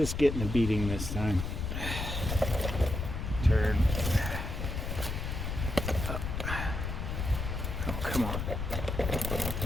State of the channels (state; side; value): noise; left; rumble, 3 dB below the sound